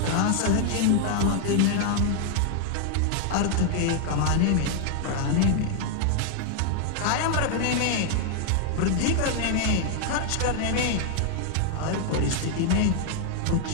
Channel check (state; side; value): different; both; correlation 0.00